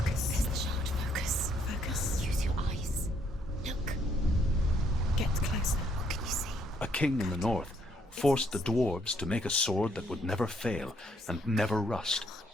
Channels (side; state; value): both; normal; correlation 0.69